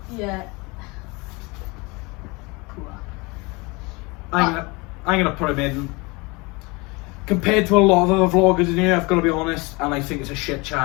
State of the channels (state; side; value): quieter; right; 26.3 dB